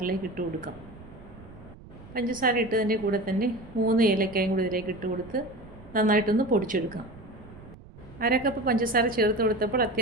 ഇട്ട് കൊടുക്കാം. പഞ്ചസാര ഇട്ടതിൻ്റെ കൂടെ തന്നെ 3 ഏലക്കായും കൂടി ഇതിലേക്ക് ഇട്ട് കൊടുത്ത് നന്നായിട്ടൊന്ന് പൊടിച്ചെടുക്കാം. 1/2 കപ്പ് പഞ്ചസാര ചേർത്ത് കൊടുത്തപ്പോൾ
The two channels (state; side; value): noise; right; rumble, 19 dB below the sound